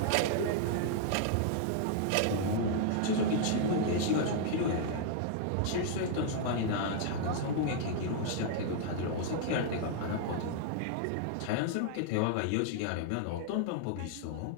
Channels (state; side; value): different; both; correlation -0.01